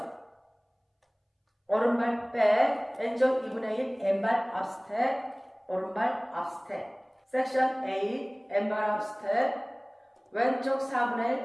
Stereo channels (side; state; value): both; identical; correlation 1.00